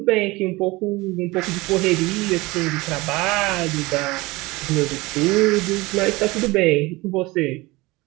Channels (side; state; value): left; quieter; 22.0 dB